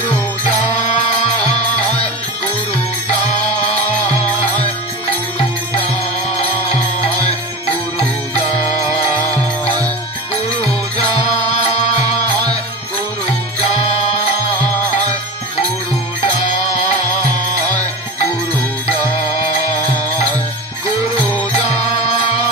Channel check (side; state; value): both; normal; correlation 0.29